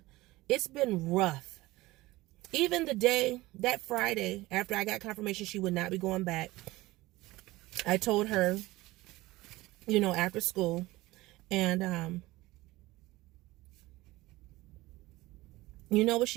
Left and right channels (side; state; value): left; quieter; 19.2 dB